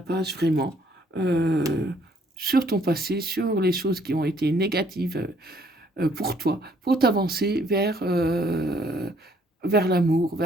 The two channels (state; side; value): normal; both; correlation 0.64